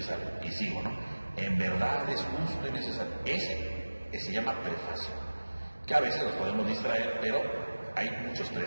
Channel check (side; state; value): both; inverted; correlation -1.00